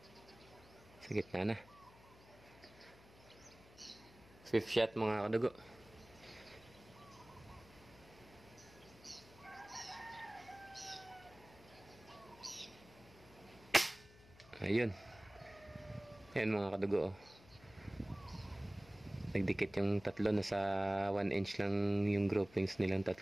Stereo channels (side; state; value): left; noise; hum, 23 dB below the sound